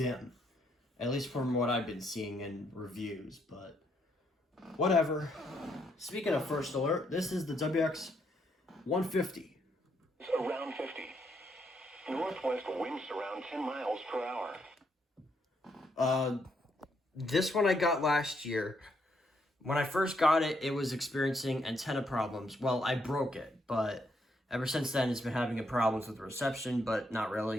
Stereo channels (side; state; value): both; normal; correlation 0.75